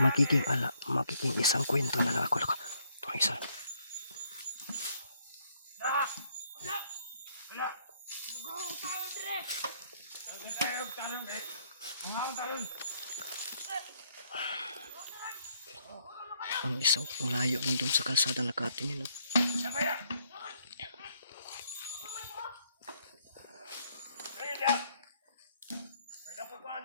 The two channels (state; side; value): inverted; both; correlation -0.69